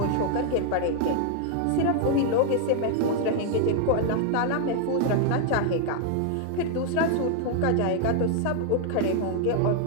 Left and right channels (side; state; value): both; different; correlation 0.00